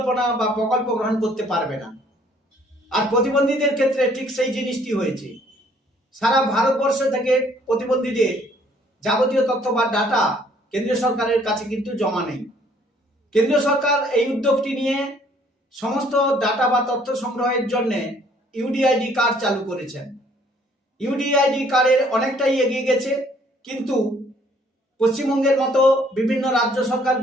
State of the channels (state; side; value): normal; both; correlation 0.61